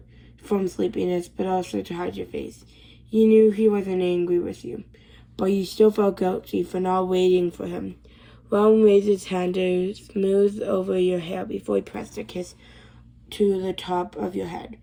sleepiness, but also to hide your face. You knew he wasn't angry with you, but you still felt guilty for not waiting for him. Ron raised his hand to smooth over your hair before he pressed a kiss to the top of your head.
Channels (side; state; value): both; identical; correlation 1.00